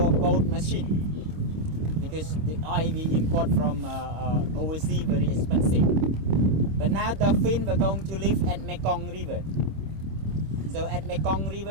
boat machine, because the oil we import from overseas very expensive. But now dolphin are going to live at Mekong River. So at Mekong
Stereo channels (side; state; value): left; late; 26 ms